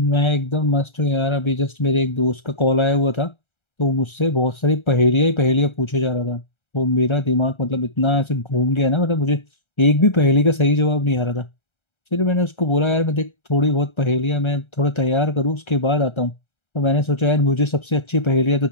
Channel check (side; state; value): right; late; 1.3 ms